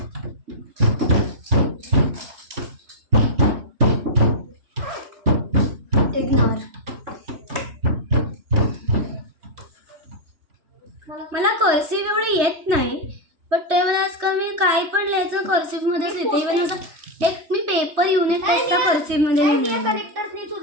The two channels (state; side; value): late; left; 3.2 ms